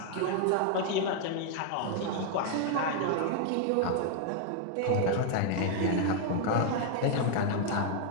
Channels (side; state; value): both; different; correlation 0.00